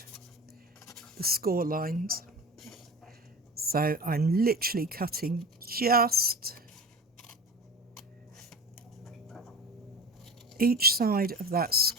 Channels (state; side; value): normal; both; correlation 0.32